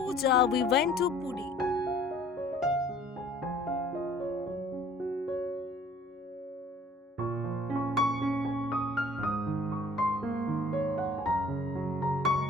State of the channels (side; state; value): both; normal; correlation 0.54